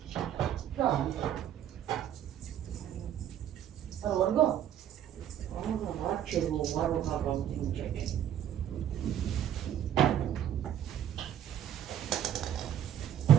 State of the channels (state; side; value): quieter; left; 10.4 dB